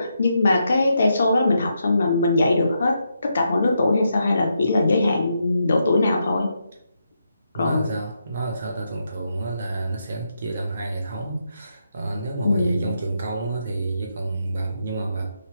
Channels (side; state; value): both; inverted; correlation -0.82